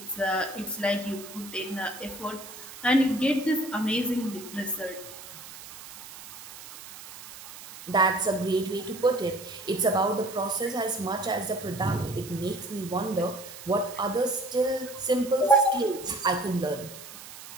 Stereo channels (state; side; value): noise; right; hiss, 15 dB below the sound